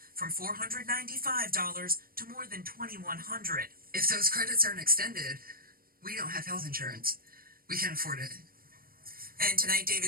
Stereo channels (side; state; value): left; late; 0.43 ms